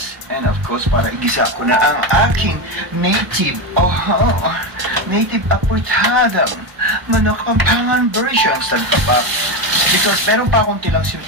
And of course, para igisa ko na ang aking native aportadang manok pampangan version sa kapak. Because meron pa akong tirang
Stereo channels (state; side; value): late; left; 1.0 ms